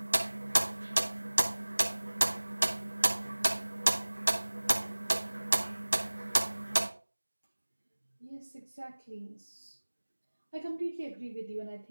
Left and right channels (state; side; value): inverted; both; correlation -1.00